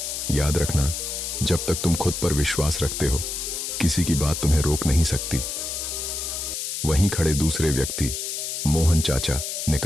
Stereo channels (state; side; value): noise; left; hiss, 4 dB below the sound